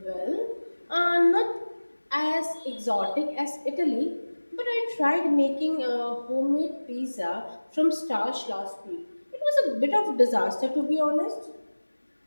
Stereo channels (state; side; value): inverted; both; correlation -1.00